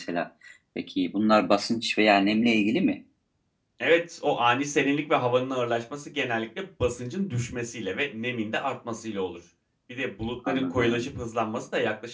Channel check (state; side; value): identical; both; correlation 1.00